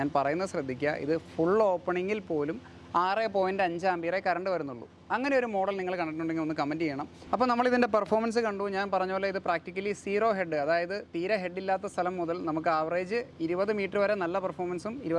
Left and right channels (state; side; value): identical; both; correlation 1.00